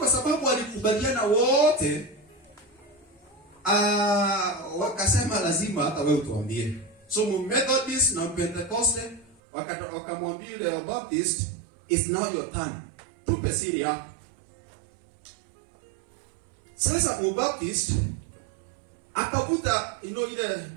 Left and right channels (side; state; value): left; drops out; at 9.3 s